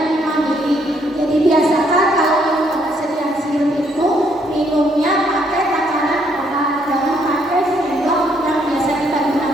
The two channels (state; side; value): normal; both; correlation 0.70